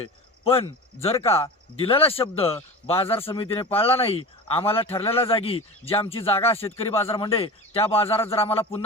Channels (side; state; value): both; normal; correlation 0.31